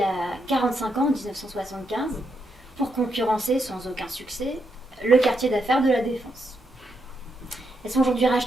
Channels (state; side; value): normal; both; correlation 0.81